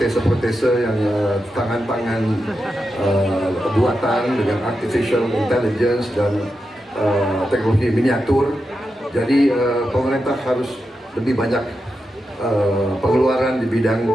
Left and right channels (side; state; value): both; normal; correlation 0.88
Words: yang tangan-tangan buatan dengan artificial intelligence dan teknologi miniatur. Jadi pemerintah harus lebih banyak pengeluaran di bidang